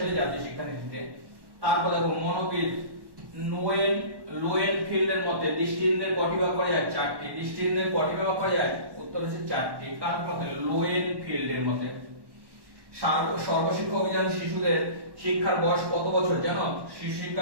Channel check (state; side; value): late; left; 1.1 ms